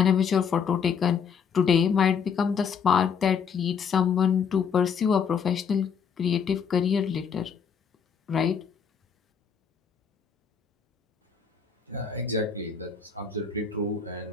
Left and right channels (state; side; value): quieter; right; 6.6 dB